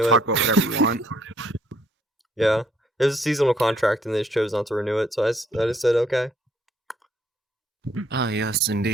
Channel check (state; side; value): normal; both; correlation 0.67